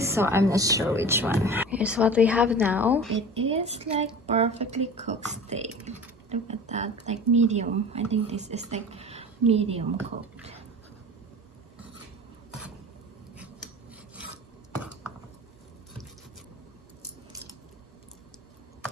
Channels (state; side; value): normal; both; correlation 0.37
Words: I'm not sure which one. Here's what we have now. It is like perfectly cooked steak. Look at that, like medium. I think this is like medium cooked.